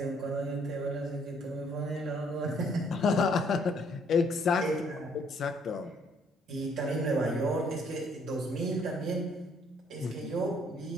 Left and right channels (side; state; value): both; normal; correlation 0.65